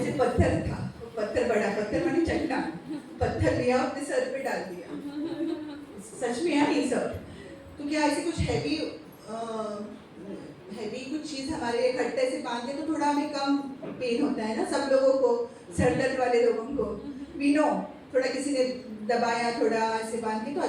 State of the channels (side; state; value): both; identical; correlation 1.00